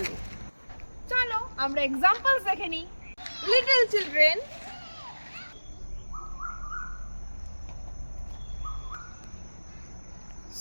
চলো আমরা এক্সাম্পলস দেখে নিই। Little children,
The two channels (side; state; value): both; inverted; correlation -1.00